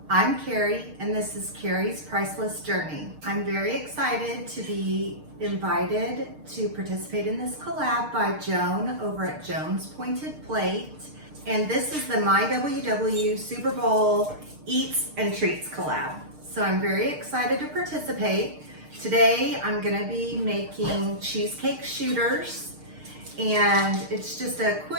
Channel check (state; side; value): late; left; 6.6 ms